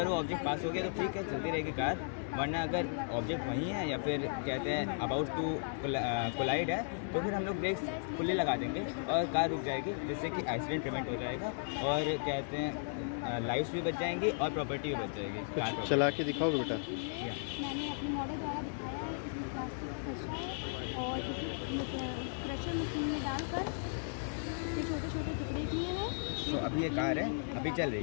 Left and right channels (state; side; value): silent; right; digital silence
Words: वो ऑब्जेक्ट पास हो गया तो ठीक है, चलती रहेगी कार. वरना अगर ऑब्जेक्ट वहीं है या फिर कहते हैं अबाउट टू कोलाइड है तो फिर हम लोग ब्रेक्स खुले लगा देंगे और कार रुक जाएगी, जिससे कि एक्सीडेंट प्रिवेंट हो जाएगा और कहते हैं लाइफ्स भी बच जाएंगी और प्रॉपर्टी भी बच जाएगी. चला के दिखाओ बेटा. मैंने अपने मॉडल द्वारा दिखाया है. इसमें प्लास्टिक का कचरा है और इसे क्रशर मशीन में डालकर ये छोटे छोटे टुकड़े किए हैं. तो अभी ये कार है, अभी चल